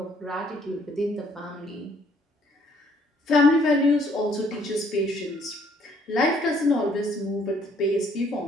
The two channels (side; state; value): both; normal; correlation 0.64